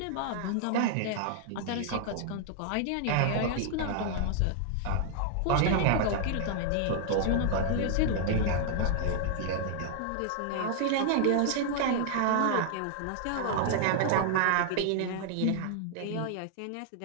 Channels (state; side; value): different; both; correlation 0.00